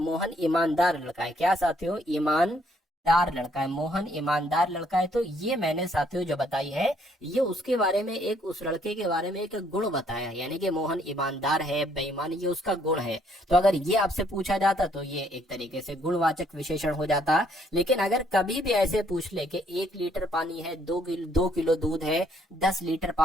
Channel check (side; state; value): both; normal; correlation 0.67